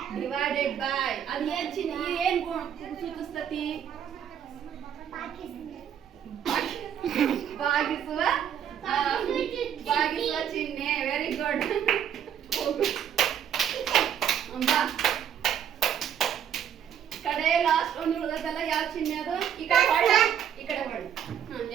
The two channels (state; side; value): quieter; left; 9.1 dB